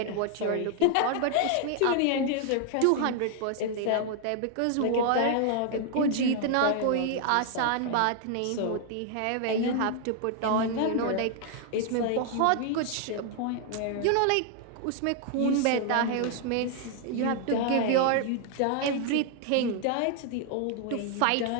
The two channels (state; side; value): different; both; correlation 0.00